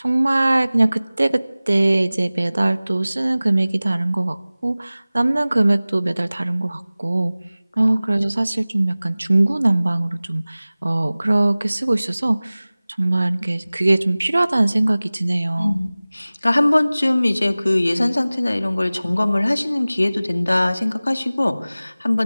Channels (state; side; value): inverted; both; correlation -0.98